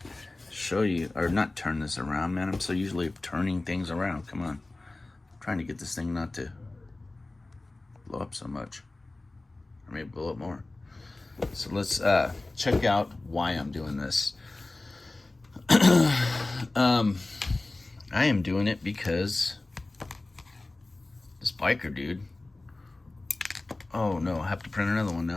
show you, or not turn this around, man. I'm so usually turning things around. Come on, I'm trying to get this thing not to blow up so much, or maybe blow up more. So let's check out why I'm doing this. I am doing it because this biker dude. Oh no, I have to print another one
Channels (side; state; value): right; quieter; 3.0 dB